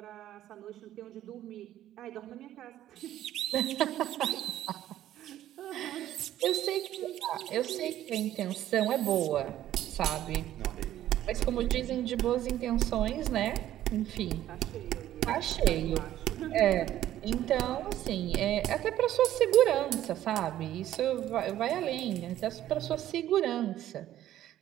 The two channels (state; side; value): quieter; left; 12.7 dB